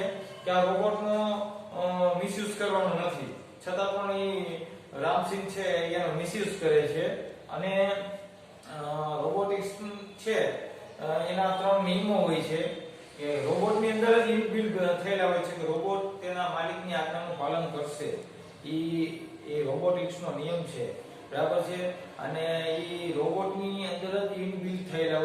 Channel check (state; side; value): identical; both; correlation 1.00